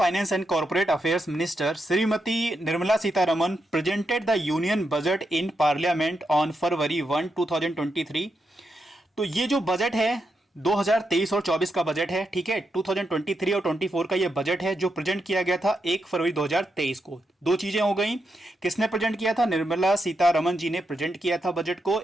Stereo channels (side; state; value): both; normal; correlation 0.84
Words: and corporate affairs minister Shrimati Nirmala Sitharaman presented the union budget in parliament on फरवरी 1, 2023। तो ये जो बजट है 2023 और 24 का बजट है, ठीक है। 2023 और 24 का ये बजट है जो प्रेजेंट किया गया था 1 फरवरी 2023 को। दो चीजें हो गई, किसने प्रेजेंट किया था? निर्मला सीतारमन जी ने प्रेजेंट किया था बजट को